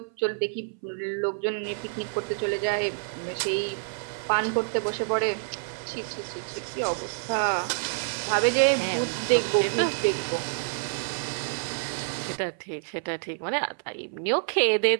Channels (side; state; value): left; silent; 60 dB below the other